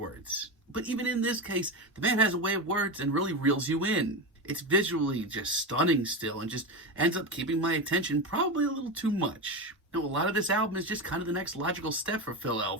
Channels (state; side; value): normal; both; correlation 0.18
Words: But even in this case, the man has a way of words and really reels you in. It's visually just stunning still and just ends up keeping my attention probably a little too much. Now, a lot of this album is just kind of the next logical step for Phil